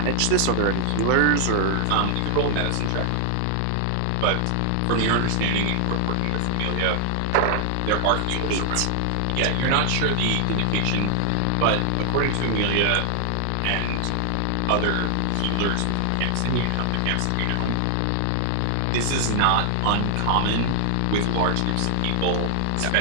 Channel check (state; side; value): different; both; correlation 0.00